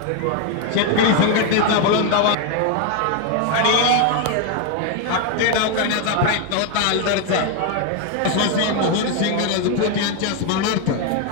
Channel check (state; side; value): different; both; correlation 0.01